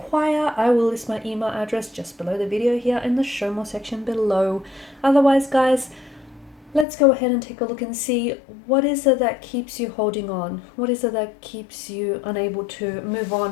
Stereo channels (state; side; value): drops out; right; at 6.9 s